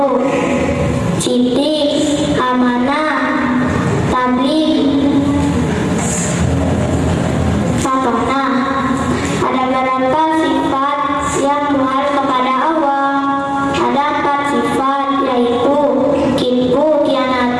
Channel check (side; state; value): both; identical; correlation 1.00